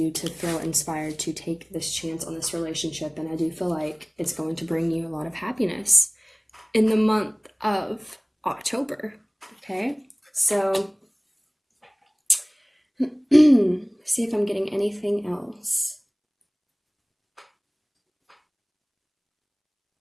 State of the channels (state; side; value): identical; both; correlation 1.00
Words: to feel inspired to take this chance on this relationship. And I do feel like it's going to bring you a lot of happiness in the month of October. Okay, so see if I'm getting anything else.